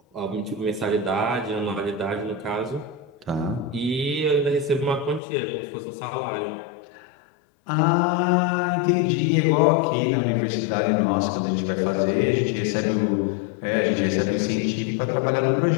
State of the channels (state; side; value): drops out; right; at 5.2 s